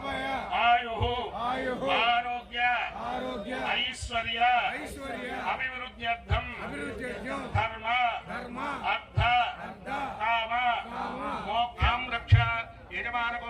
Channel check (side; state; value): both; identical; correlation 1.00